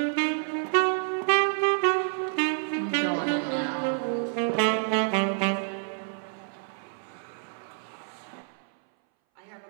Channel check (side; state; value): left; silent; 59 dB below the other